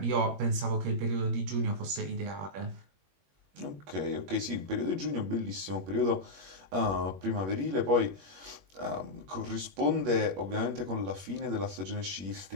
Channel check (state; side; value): late; left; 21 ms